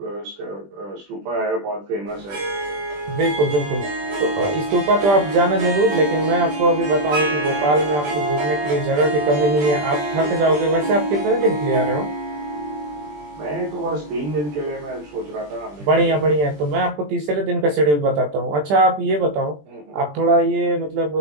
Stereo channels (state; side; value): late; left; 20 ms